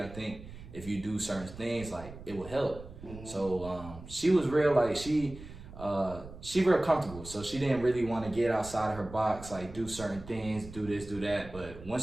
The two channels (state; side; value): noise; right; rumble, 15 dB below the sound